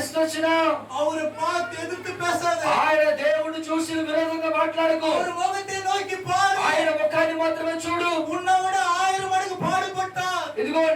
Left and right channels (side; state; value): both; identical; correlation 1.00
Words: వచ్చినా ఆయన దేవుడు చూసి విరోధంగా మాట్లాడకు. ఆయన ముఖాన్ని మాత్రమే చూడు. ఇదిగో